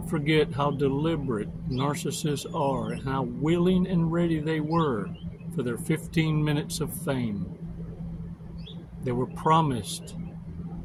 forget how deliberate narcissists are and how willing and ready they were for their 15 minutes of fame. They were promised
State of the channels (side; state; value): both; identical; correlation 1.00